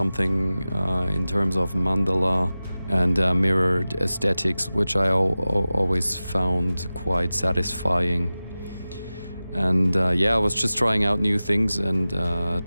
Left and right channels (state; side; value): inverted; both; correlation -0.96